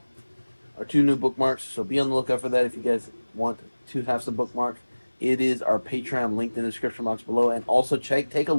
Our 2 new bookmarks, so be on the lookout for that if you guys want to have some bookmarks. It is our Patreon linked in the description box below. And also take a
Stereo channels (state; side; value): inverted; both; correlation -1.00